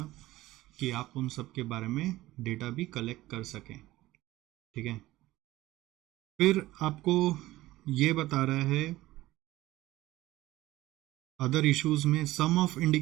कि आप उन सब के बारे में डेटा भी कलेक्ट कर सकें, ठीक है। फिर आपको ये बता रहा है अदर इश्यूज में some of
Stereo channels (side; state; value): left; quieter; 17.0 dB